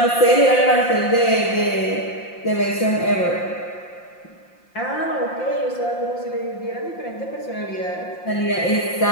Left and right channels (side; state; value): right; late; 5.7 ms